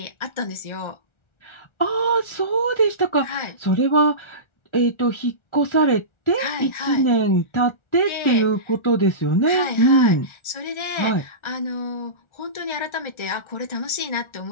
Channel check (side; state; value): right; late; 1.4 ms